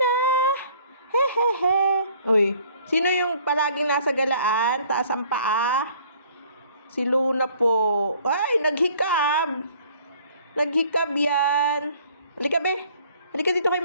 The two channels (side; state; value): both; inverted; correlation -0.57